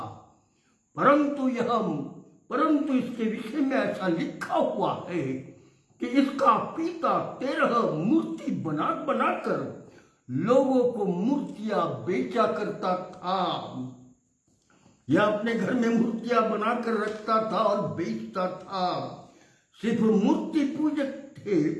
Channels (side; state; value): both; identical; correlation 1.00